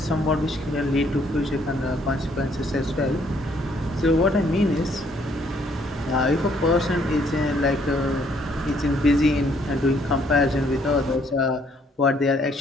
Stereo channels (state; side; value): normal; both; correlation 0.66